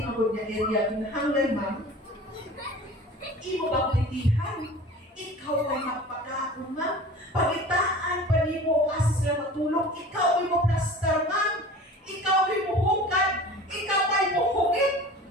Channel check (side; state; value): both; normal; correlation 0.40